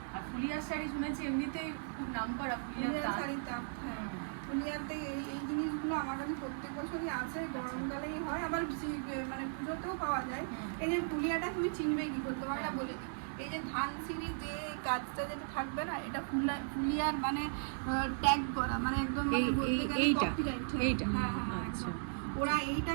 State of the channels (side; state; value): left; silent; 53 dB below the other